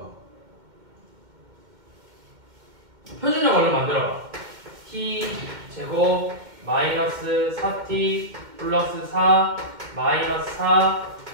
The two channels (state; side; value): late; left; 2.1 ms